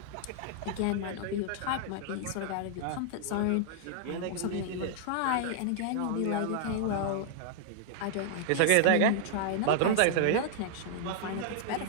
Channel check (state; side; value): different; both; correlation -0.01